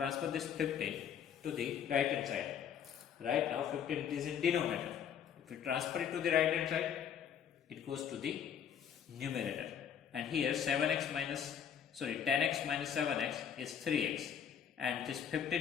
this 15 to the right hand side. Right now 15 is in denominator. If we transfer it to the right hand side, it goes to the numerator. And here 10x minus 7x is 3x. And this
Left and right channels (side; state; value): right; quieter; 8.4 dB